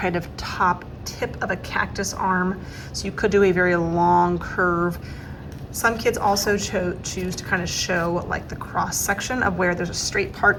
of top tip of a cactus arm, so you could do a very long curve. Some kids also choose to kind of show like the cross section of where there's a straight part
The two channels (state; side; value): identical; both; correlation 1.00